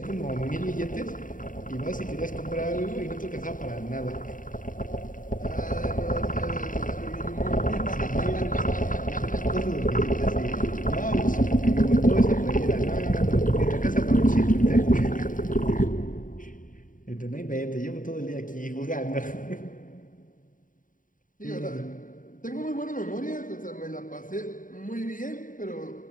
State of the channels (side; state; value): right; late; 0.39 ms